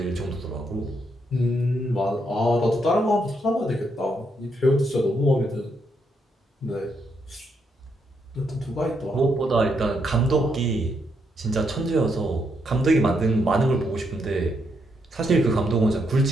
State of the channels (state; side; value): normal; both; correlation 0.78